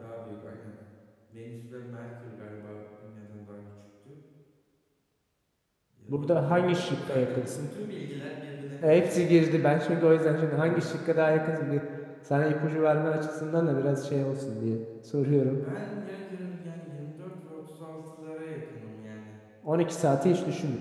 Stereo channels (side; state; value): both; identical; correlation 1.00